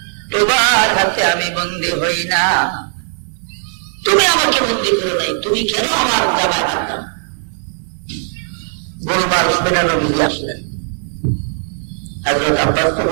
তোমার হাতে আমি বন্দী হই না, তুমি আমাকে বন্দী করো নাই, তুমি কেন আমার জামায় হাত দাও? গোলমাল শুনে নবীজি আসলেন। হযরত আব্বাস তো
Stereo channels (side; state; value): left; silent; digital silence